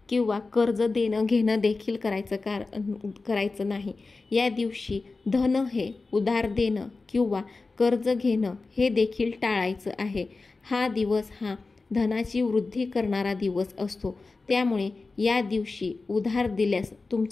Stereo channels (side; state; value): right; quieter; 3.8 dB